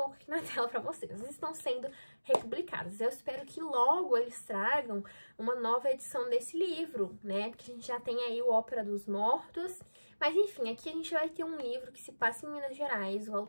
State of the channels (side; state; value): both; inverted; correlation -1.00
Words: aqui na tela pra vocês. Elas estão sendo republicadas. Eu espero que logo eles tragam uma nova edição desse livro, né? Porque a gente já tem aí o Ópera dos Mortos. Mas enfim, aqui a gente vai ter um livro que se passa em Minas Gerais. O